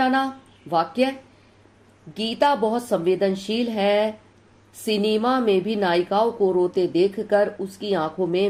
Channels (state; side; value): identical; both; correlation 1.00